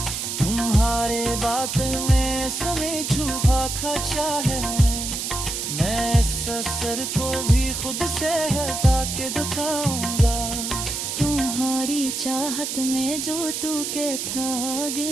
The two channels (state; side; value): noise; right; hiss, 3 dB below the sound